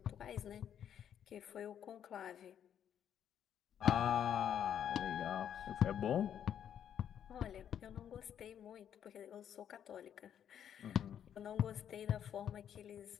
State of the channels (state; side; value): quieter; right; 9.4 dB